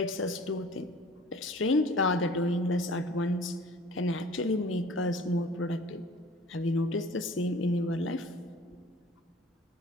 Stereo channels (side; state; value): both; normal; correlation 0.47